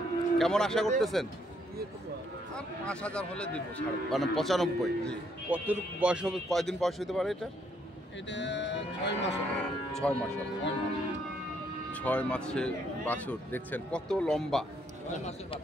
কেমন আশা করতেছেন? আর 5000 হলে দিব ছাড়ব। মানে 95। জি। কত বয়স হবে, কয়দিন বয়স হতে পারে এটা? এটা 6 মাস হবে। 6 মাস হবে। 6 মাস। 6 মাসে বাছুর দেখছেন কত লম্বা, 6 মাসের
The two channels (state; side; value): normal; both; correlation 0.71